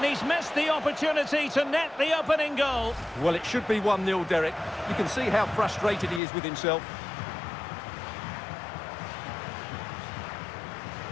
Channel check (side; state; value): right; drops out; at 6.2 s